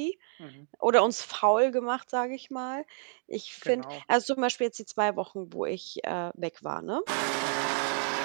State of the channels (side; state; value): left; silent; 58 dB below the other